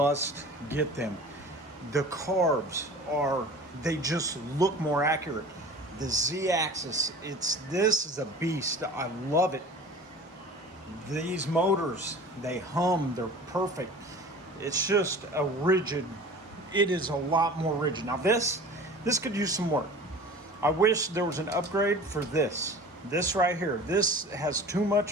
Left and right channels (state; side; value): normal; both; correlation 0.41